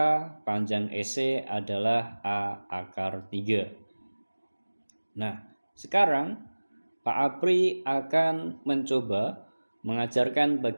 panjang EC adalah A akar 3. Nah, sekarang Pak Apri akan mencoba mengajarkan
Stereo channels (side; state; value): both; inverted; correlation -1.00